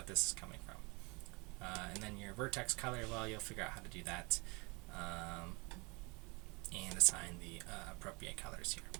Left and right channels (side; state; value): left; quieter; 27.9 dB